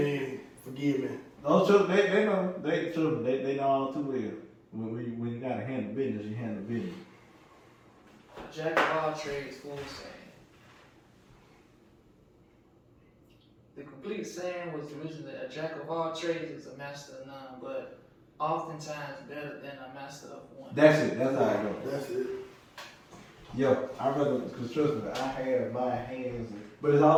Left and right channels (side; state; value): both; identical; correlation 1.00